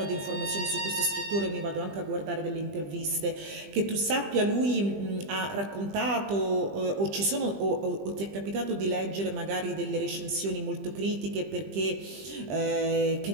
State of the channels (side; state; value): left; late; 20 ms